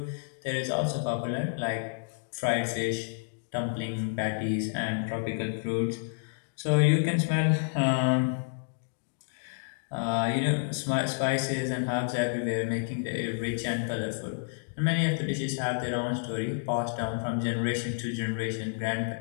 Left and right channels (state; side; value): silent; right; digital silence